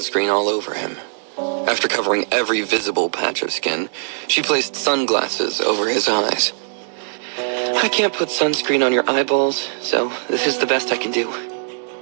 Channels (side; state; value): left; silent; 60 dB below the other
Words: all over him. After covering every visible patch of skin, she placed sunglasses over his eyes. I can't put sunscreen on your eyeballs, so this is the best I can do.